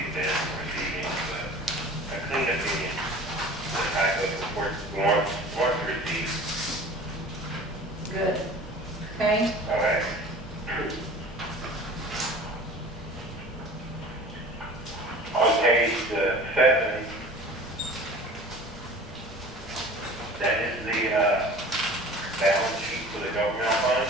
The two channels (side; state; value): both; normal; correlation 0.42